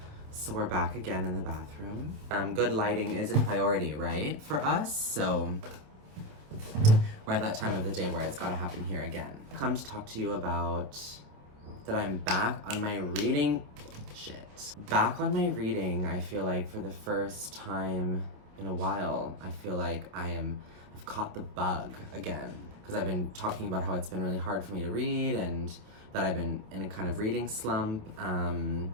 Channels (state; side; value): late; left; 27 ms